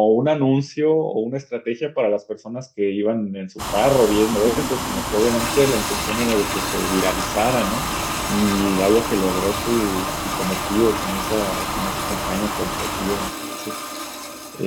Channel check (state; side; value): identical; both; correlation 1.00